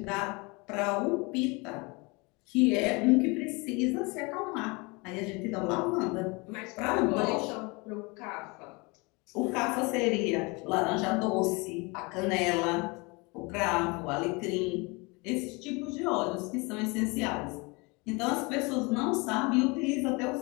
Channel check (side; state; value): right; quieter; 27.5 dB